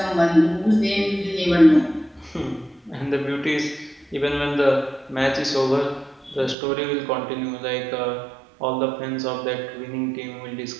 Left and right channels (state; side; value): drops out; left; at 6.6 s